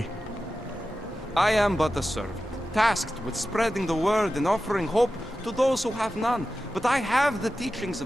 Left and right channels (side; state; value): both; normal; correlation 0.93